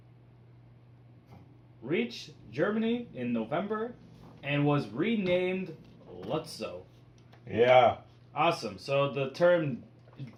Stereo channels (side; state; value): both; identical; correlation 1.00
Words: reached Germany in November and was renamed Lutzow. Yeah. Awesome. So the term